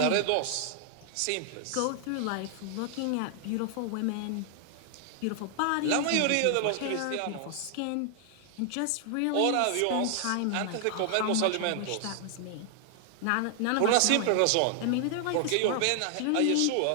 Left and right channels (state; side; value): different; both; correlation 0.00